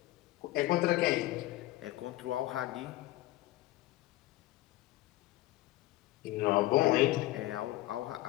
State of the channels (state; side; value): quieter; right; 17.1 dB